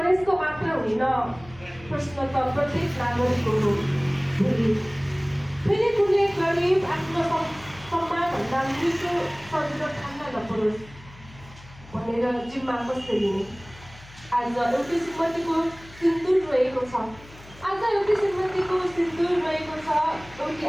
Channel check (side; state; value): left; noise; hum, 21 dB below the sound